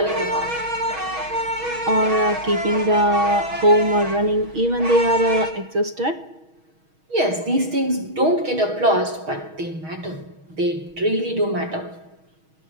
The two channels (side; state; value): left; late; 6.3 ms